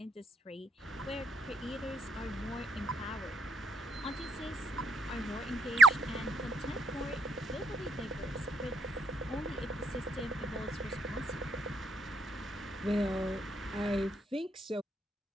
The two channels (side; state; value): both; normal; correlation 0.75